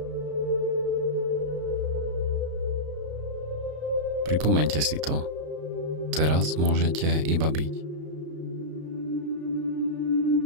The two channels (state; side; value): late; left; 33 ms